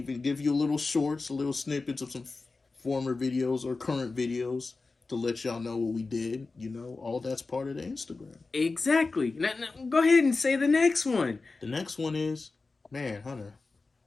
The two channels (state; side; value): quieter; right; 3.8 dB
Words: give you little shorts, little snippets of some former videos or current videos to let y'all know what we did. All that's part of the Instagram. Exactly. Now, go ahead and say the next one. The next one is, man, Hunter,